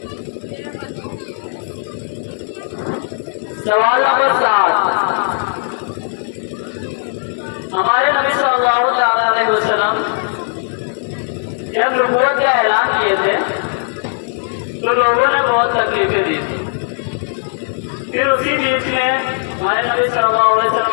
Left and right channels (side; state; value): right; silent; 63 dB below the other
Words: सवाल नंबर 7, हमारे नबी सल्लल्लाहु अलैहि वसल्लम जब नबूवत का ऐलान किए थे तो लोगों ने बहुत तकलीफें दी थी। फिर उसी बीच में हमारे नबी सल्लल्लाहु अलैहि वसल्लम